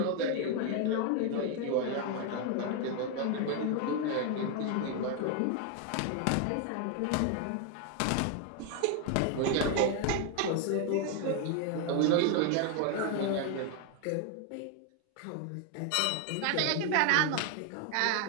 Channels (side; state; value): both; different; correlation 0.01